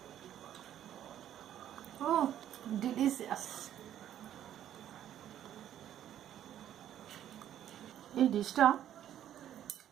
ও ডিলিশিয়াস। এই ডিশটা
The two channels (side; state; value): left; quieter; 11.1 dB